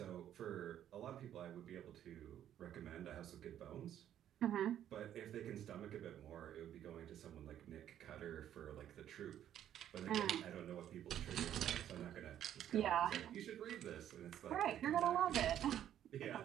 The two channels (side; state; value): left; quieter; 10.8 dB